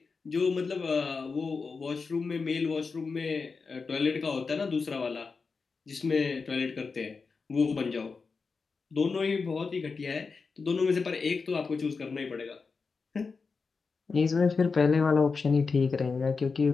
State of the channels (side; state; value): right; quieter; 4.7 dB